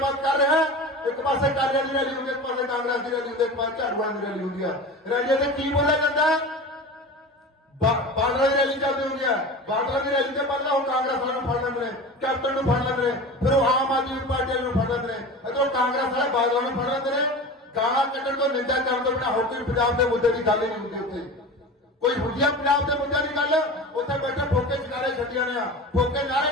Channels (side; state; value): both; normal; correlation 0.32